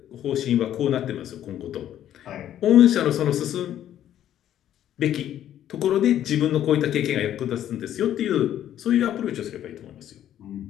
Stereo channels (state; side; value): quieter; right; 11.3 dB